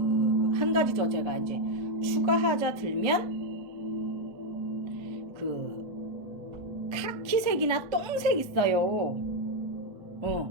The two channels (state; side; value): normal; both; correlation 0.03